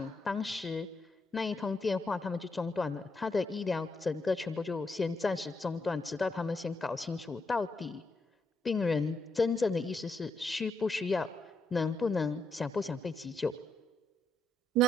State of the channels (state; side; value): normal; both; correlation 0.79